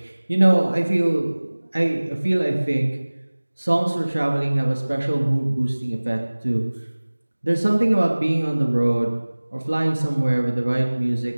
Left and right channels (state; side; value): inverted; both; correlation -1.00